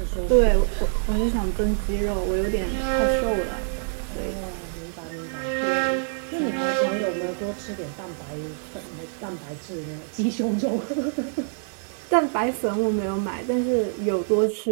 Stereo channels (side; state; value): left; silent; digital silence